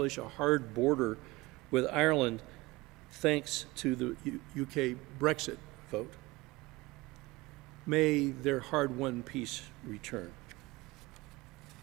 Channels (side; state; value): left; quieter; 21.5 dB